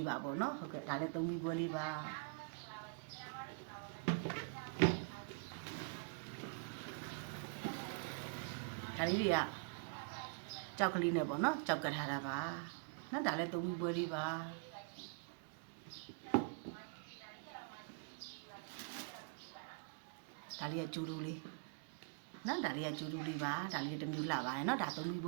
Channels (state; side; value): quieter; left; 34.8 dB